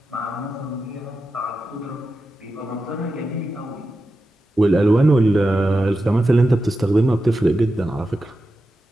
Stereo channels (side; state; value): both; normal; correlation 0.91